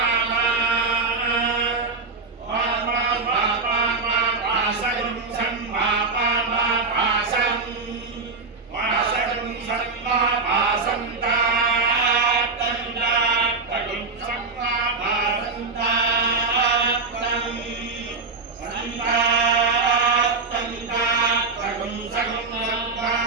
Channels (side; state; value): left; quieter; 4.1 dB